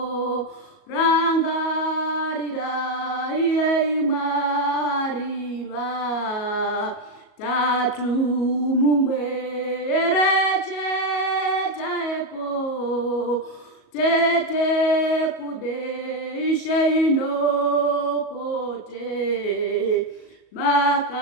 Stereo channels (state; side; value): late; right; 38 ms